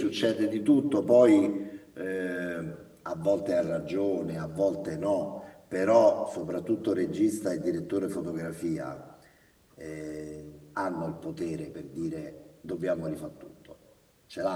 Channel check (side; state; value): both; identical; correlation 1.00